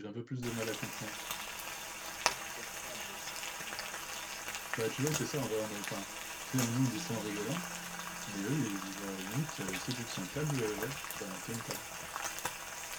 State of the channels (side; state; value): both; identical; correlation 1.00